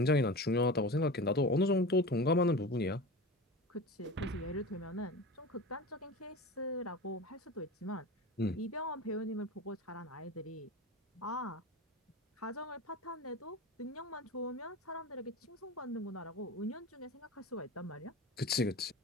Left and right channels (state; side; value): normal; both; correlation 0.31